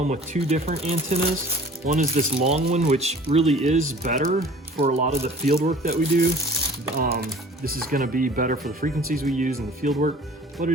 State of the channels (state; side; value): normal; both; correlation 0.47